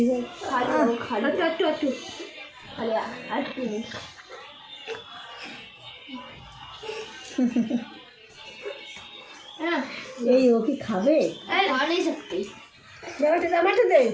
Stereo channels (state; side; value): identical; both; correlation 1.00